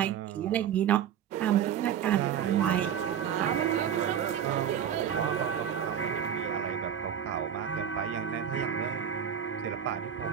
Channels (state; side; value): quieter; left; 9.0 dB